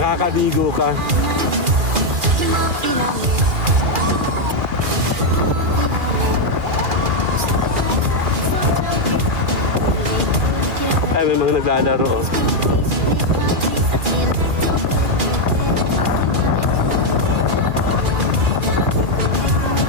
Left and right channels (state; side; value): late; left; 2.4 ms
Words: ka. Ay, may mga naglalaro. Oh.